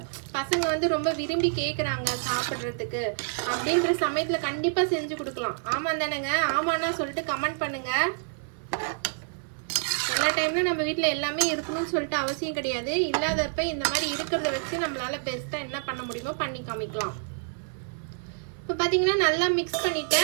பசங்க வந்து ரொம்ப விரும்பி கேட்குறாங்க சாப்பிட்றதுக்கு அப்படின்ற சமயத்தில் கண்டிப்பாக செஞ்சு கொடுக்கலாம். ஆமாம் தானேங்க? ஆமாண்ணா சொல்லிட்டு கமெண்ட் பண்ணுங்கள். எல்லா டைம்லையும் நம்ம வீட்டில் எல்லாமே இருக்கணும்னு சொல்லிட்டு அவசியம் கிடையாது. இல்லாதப்ப இந்த மாதிரி இருக்கிறத வச்சு நம்மளால பெஸ்ட்டாக என்ன பண்ண முடியுமோ பண்ணி காமிக்கலாம். இப்போ பார்த்தீங்கன்னா நல்லா மிக்ஸ்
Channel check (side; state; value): left; silent; 57 dB below the other